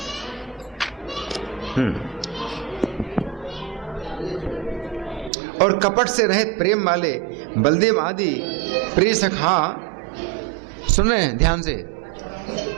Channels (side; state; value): left; drops out; at 5.3 s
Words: और कपट से रहित प्रेम वाले बलदेव आदि प्रिय सखा, सुने ध्यान से,